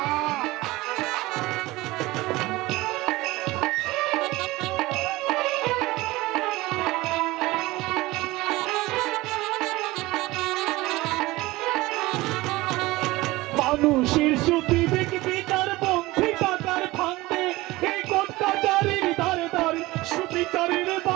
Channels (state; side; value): quieter; left; 19.8 dB